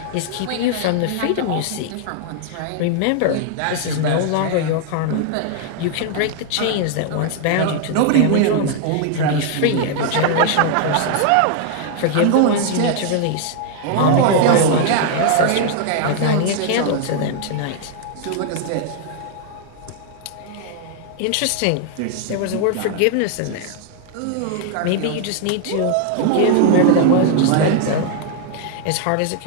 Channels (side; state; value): both; different; correlation 0.00